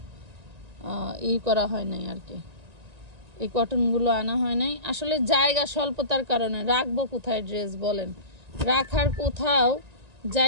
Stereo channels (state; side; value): late; left; 1.9 ms